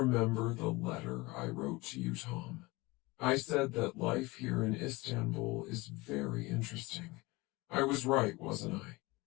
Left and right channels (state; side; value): quieter; right; 22.6 dB